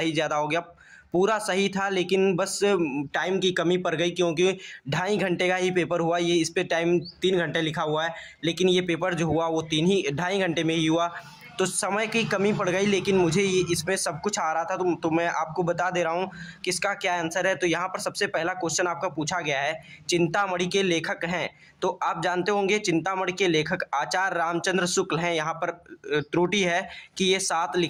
ज़्यादा हो गया। पूरा सही था, लेकिन बस टाइम की कमी पड़ गई, क्योंकि 2.5 घंटे का ही पेपर हुआ। ये इस पे टाइम 3 घंटे लिखा हुआ है, लेकिन ये पेपर जो हुआ वो 2.5 घंटे में ही हुआ। तो समय की कमी पड़ गई, लेकिन मुझे ये इसमें सब कुछ आ रहा था, तो मैं आपको बता दे रहा हूँ कि इसका क्या आंसर है। तो यहाँ पर सबसे पहला क्वेश्चन आपका पूछा गया है, चिंतामणि के लेखक हैं। तो आप जानते होंगे चिंतामणि के लेखक आचार्य रामचंद्र शुक्ल हैं। यहाँ पर त्रुटि है कि ये 7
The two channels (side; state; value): both; identical; correlation 1.00